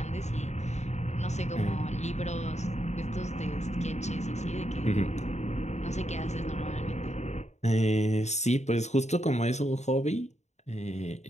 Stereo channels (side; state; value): right; late; 0.33 ms